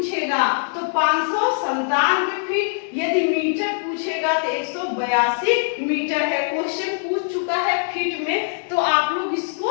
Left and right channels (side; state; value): right; silent; digital silence